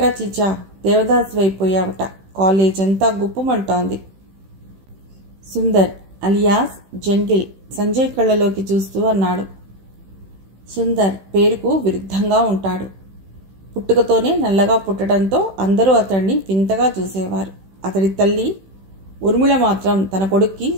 చిచా, దేవదాసు అయిపోయావట, కాలేజ్ అంతా గుప్పమంటోంది. సుందర్ అలియాస్ జంగిల్ సంజయ్ కళ్ళలోకి చూస్తూ అన్నాడు. సుందర్ పేరుకు విరుద్ధంగా ఉంటాడు. పుట్టుకతోనే నల్లగా పుట్టడంతో అందరూ అతన్ని వింతగా చూసేవారు. అతడి తల్లి ఉర్మిళ మాత్రం తన కొడుక్కి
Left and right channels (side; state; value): left; late; 16 ms